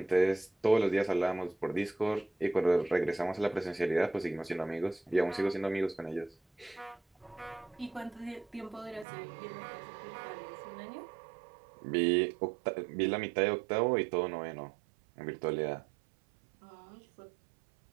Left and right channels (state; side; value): drops out; left; at 9.1 s